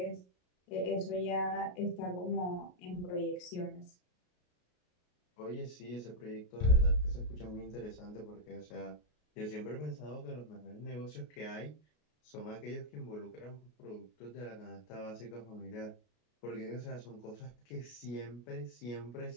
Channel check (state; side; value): late; right; 33 ms